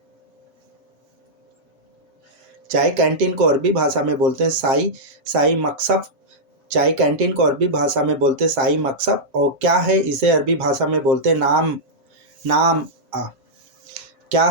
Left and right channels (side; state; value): left; late; 7.5 ms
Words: चाय कैंटीन को अरबी भाषा में बोलते हैं साई साई मकसब। चाय कैंटीन को अरबी भाषा में बोलते हैं साई मकसब। और क्या है इसे अरबी भाषा में बोलते हैं नाम। नाम क्या